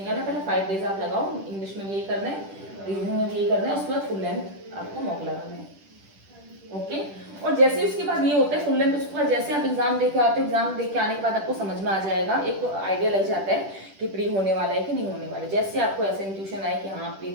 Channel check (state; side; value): late; left; 10 ms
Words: करना, पहले 5 डेज आप लगाओ, इंग्लिश में भी यही करना है, रीजनिंग में भी यही करना है, उसके बाद फुल लेंथ आपको मॉक लगाना है। ओके, और जैसे उसके बाद ये होता है फुल लेंथ, उसके बाद जैसे आप एग्जाम देके आते हो, एग्जाम देके आने के बाद आपको समझ में आ जाएगा, एक आइडिया लग जाता है कि प्री होने वाला है कि नहीं होने वाला है। जैसे आपको ऐसे इंट्यूशन आए कि हाँ प्री